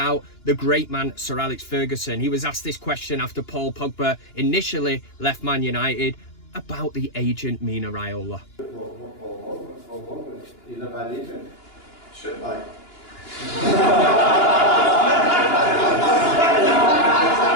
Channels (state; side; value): late; right; 2.9 ms